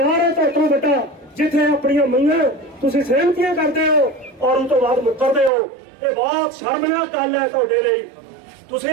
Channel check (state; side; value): drops out; left; at 5.5 s